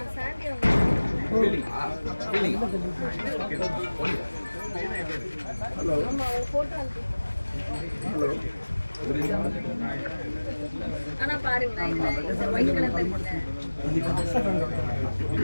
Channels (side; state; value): both; inverted; correlation -1.00